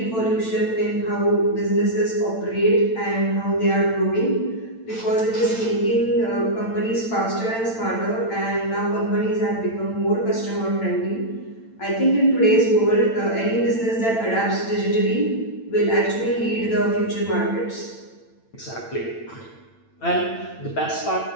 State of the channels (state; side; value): late; right; 8.9 ms